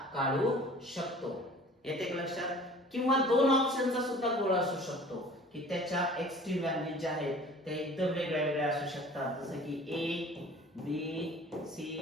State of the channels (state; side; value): normal; both; correlation 0.47